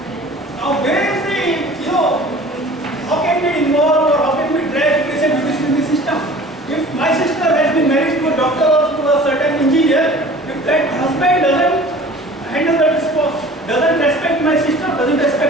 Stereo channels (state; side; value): normal; both; correlation 0.45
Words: Now where is the, how can we involve or how can we drag patient in the system? If my sister has been married to a doctor or to a certain engineer, if that husband doesn't handle that spouse, doesn't respect my sister, doesn't